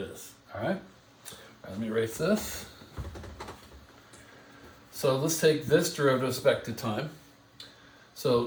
is, all right? Let me erase this. So let's take this derivative with respect to time.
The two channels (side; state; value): both; identical; correlation 1.00